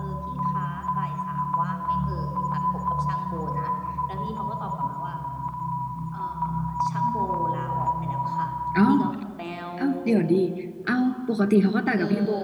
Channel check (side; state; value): both; identical; correlation 1.00